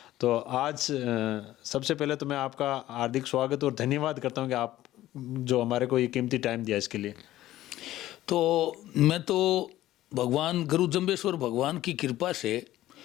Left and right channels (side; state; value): right; quieter; 14.7 dB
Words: तो आज सबसे पहले तो मैं आपका हार्दिक स्वागत और धन्यवाद करता हूं कि आप जो हमारे को ये कीमती टाइम दिया इसके लिए। तो मैं तो भगवान गुरु जम्बेश्वर भगवान की कृपा से